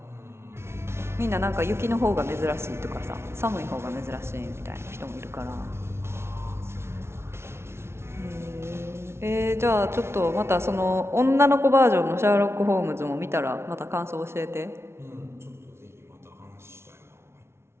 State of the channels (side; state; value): left; late; 0.12 ms